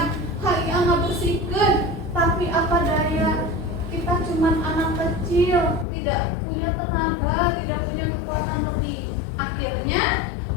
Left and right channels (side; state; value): right; drops out; at 5.9 s